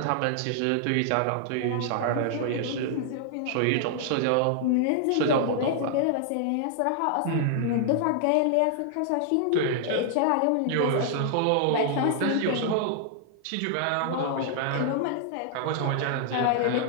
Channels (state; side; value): different; both; correlation -0.01